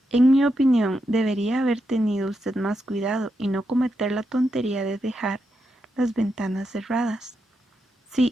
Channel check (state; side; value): normal; both; correlation 0.84